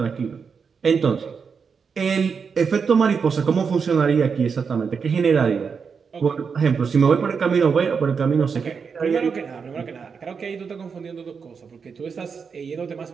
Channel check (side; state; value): left; quieter; 5.9 dB